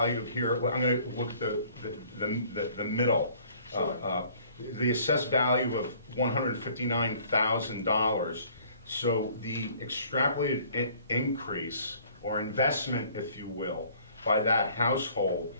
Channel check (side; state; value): both; inverted; correlation -0.56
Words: here, well, I'm going to look at the middle. Sure. The assessed value of $159,000. So the extrapolated increase or investment, if you will, by that household